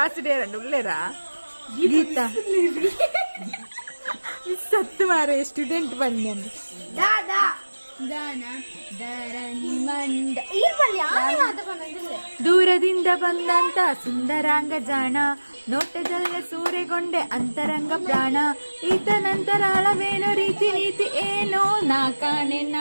ಎರಡು ಉಳ್ಳೇರ ಗೀತ ಸತ್ತು ಮಾರೆ ಸ್ಟೂಡೆಂಟ್ ಬಂದೆ ಅಂದ ದೂರದಿಂದ ಬಂದಂತ ಸುಂದರಾಂಗ ಜಾಣ ನೋಟದಲ್ಲ ಸೂರೆಗೊಂಡೆ ಅಂತರಂಗ ಪ್ರಾಣ ಈತ ನಂತರಾಳವೇನೋ ರೀತಿ ನೀತಿ ಏನೋ ನಾ ಕಾಣೆ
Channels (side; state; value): both; inverted; correlation -1.00